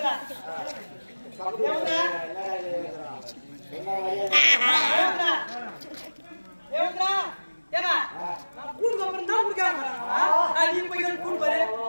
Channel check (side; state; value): both; inverted; correlation -1.00